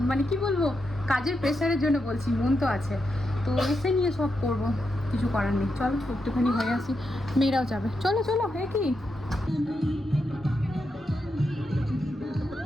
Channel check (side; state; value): both; normal; correlation 0.85